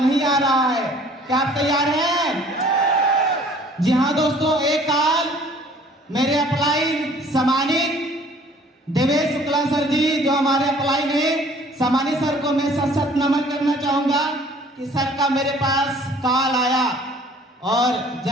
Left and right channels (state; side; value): normal; both; correlation 0.54